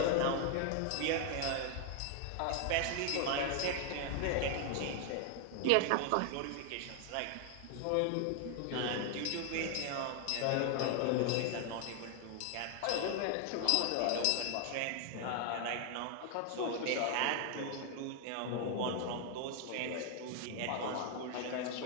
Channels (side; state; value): both; different; correlation 0.00